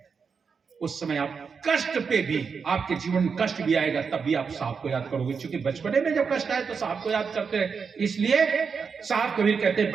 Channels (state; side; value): quieter; left; 5.7 dB